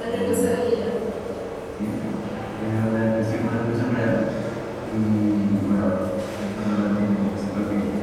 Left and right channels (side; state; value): both; identical; correlation 1.00